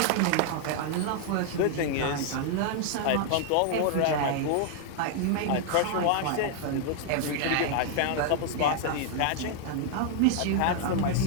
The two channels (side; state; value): both; different; correlation 0.00